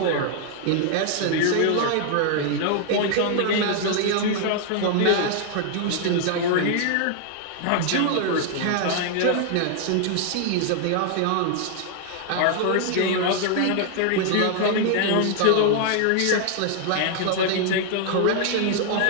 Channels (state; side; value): different; both; correlation 0.00